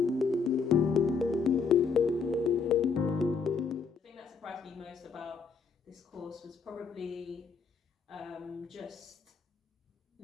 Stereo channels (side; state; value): right; quieter; 5.4 dB